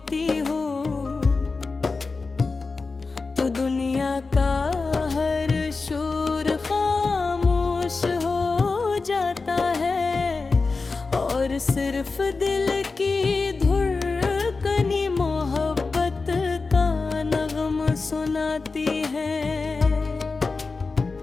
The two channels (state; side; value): quieter; right; 4.1 dB